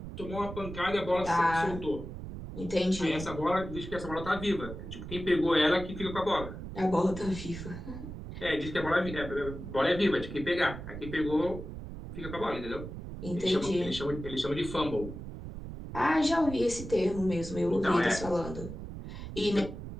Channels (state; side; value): noise; right; rumble, 10 dB below the sound